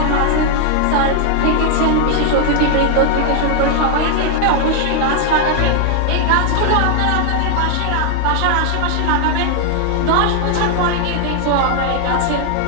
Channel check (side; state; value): both; different; correlation 0.00